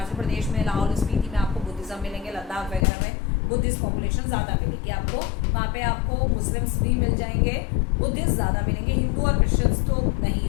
प्रदेश में लाहौल स्पीति में आपको बुद्धिज्म मिलेंगे, लद्दाख वगैरह में बुद्धिस्ट पॉपुलेशन ज़्यादा मिलेगी आपको. वहाँ पे आपको मुस्लिम्स भी मिल जाएंगे, बुद्धिस्ट ज़्यादा मिलेंगे. हिंदू और क्रिश्चियंस तो नहीं,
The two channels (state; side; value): drops out; right; at 2.9 s